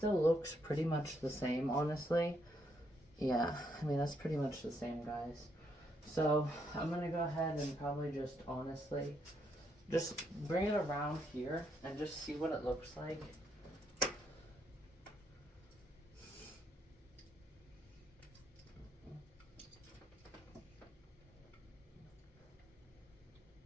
looks pretty much the same, honestly. Yeah, I mean, that's pretty much the same, guys. So, I'm going to go ahead and probably just, honestly, just bring it around here and just see what it looks like.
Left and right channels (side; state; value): both; normal; correlation 0.75